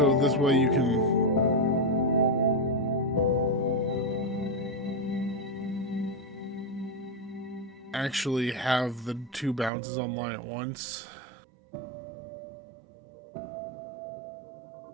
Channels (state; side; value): drops out; left; at 9.7 s